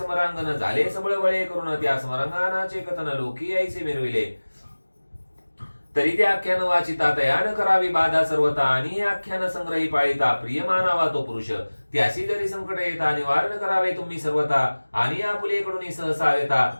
झाले सबळ वळे करून त्या समरांगणाचे कथन लोकी ऐसे मिरविले तरी ते आख्यान वाचिता तयान करावी बाधा सर्वता आणि हे आख्यान संग्रही पाळिता प्रिय मानावा तो पुरुष त्याशी जरी संकट येता निवारण करावे तुम्ही सर्वता आणि आपुलेकडून सहसा येता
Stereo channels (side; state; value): both; inverted; correlation -1.00